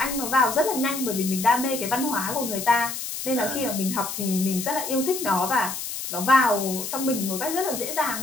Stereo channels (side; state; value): left; noise; hiss, 6 dB below the sound